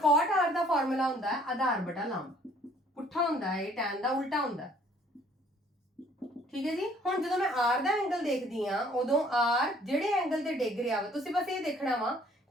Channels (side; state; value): both; normal; correlation 0.59